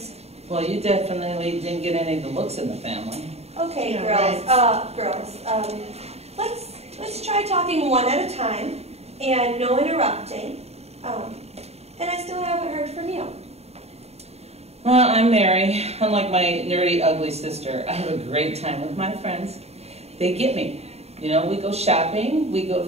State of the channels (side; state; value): left; late; 0.30 ms